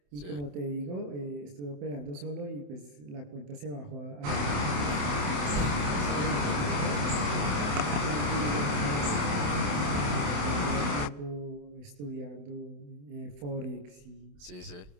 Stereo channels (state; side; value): late; left; 28 ms